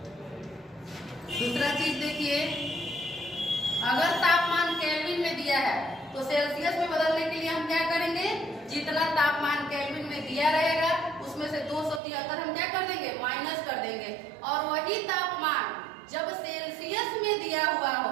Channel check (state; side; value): drops out; left; at 12.0 s